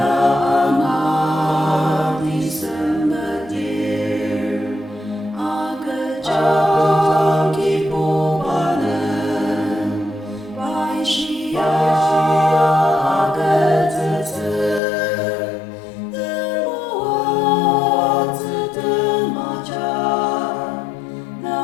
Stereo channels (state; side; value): drops out; right; at 14.8 s